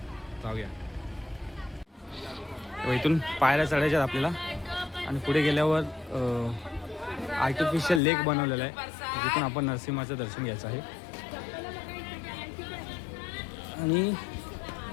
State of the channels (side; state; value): right; drops out; at 8.0 s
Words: जाऊया. इथून पायऱ्या चढायच्यात आपल्याला आणि पुढे गेल्यावर आर्टिफिशियल लेक बनवलेला आहे जिथून आपण नरसिंहाचं दर्शन घ्यायचं आहे. आणि